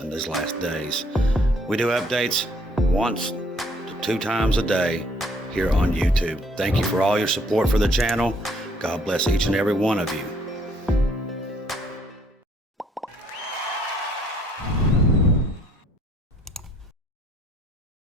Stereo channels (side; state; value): both; normal; correlation 0.63